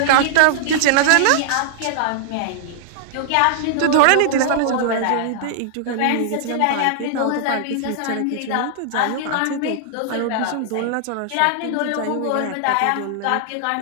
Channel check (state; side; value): different; both; correlation -0.01